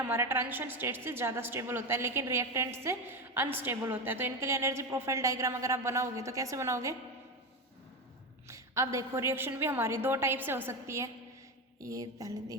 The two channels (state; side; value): normal; both; correlation 0.17